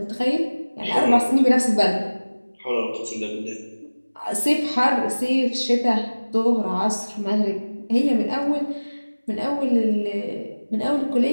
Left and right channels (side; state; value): both; inverted; correlation -1.00